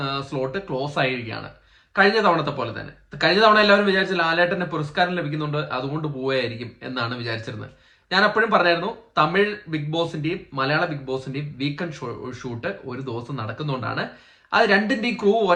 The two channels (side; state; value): both; identical; correlation 1.00